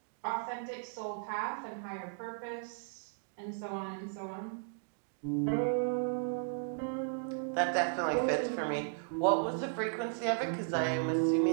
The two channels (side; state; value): left; silent; digital silence